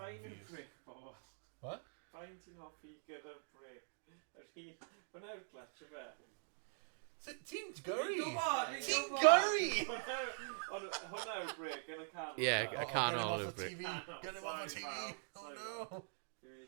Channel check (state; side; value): silent; left; digital silence